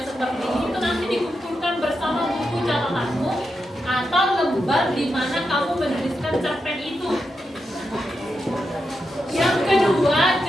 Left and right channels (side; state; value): both; normal; correlation 0.86